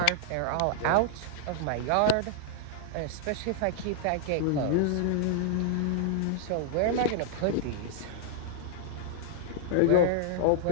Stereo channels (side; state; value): both; different; correlation -0.01